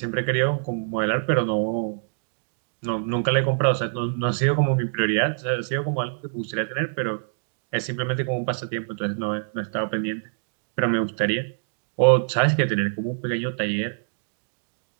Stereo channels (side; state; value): left; silent; digital silence